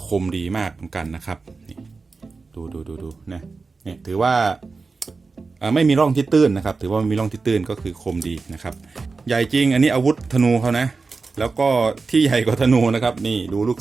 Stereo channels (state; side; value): quieter; left; 4.2 dB